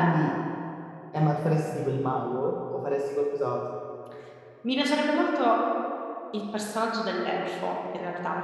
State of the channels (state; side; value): identical; both; correlation 1.00